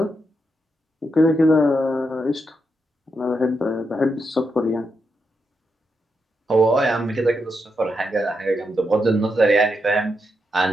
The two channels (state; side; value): normal; both; correlation 0.83